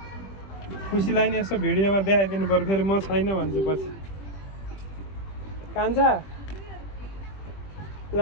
खुसीलाई नि यसो भिडियोमा देखाइदिनु पर्यो फेरि म छैन भन्छु पछि कान्छा ल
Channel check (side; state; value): right; late; 20 ms